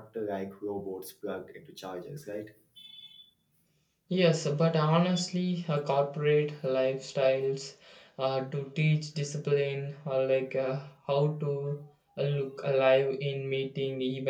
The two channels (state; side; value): identical; both; correlation 1.00